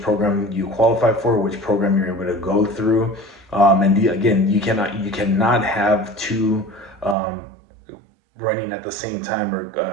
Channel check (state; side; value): drops out; left; at 7.2 s